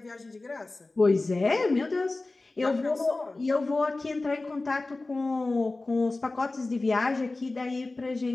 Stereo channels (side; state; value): right; quieter; 3.2 dB